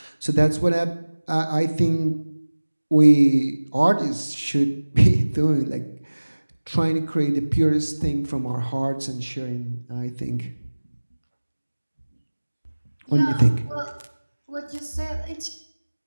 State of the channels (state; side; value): inverted; both; correlation -1.00